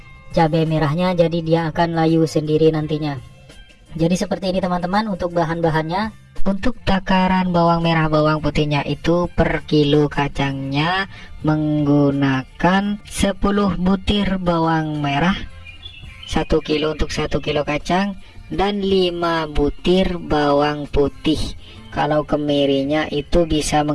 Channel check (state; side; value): identical; both; correlation 1.00